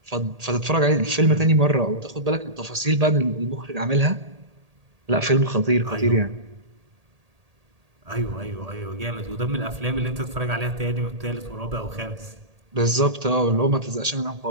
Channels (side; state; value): left; late; 1.8 ms